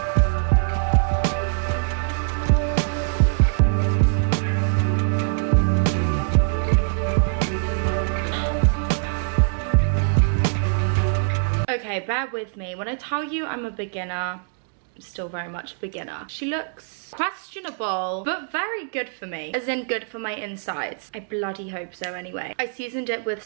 Okay, bear with me. When I tell you I'm a beginner, I'm still very much a beginner. She looks questionable, but very good for me. As in good for my insides. I bloody hope so anyway. I seasoned it with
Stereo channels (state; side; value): silent; left; 63 dB below the other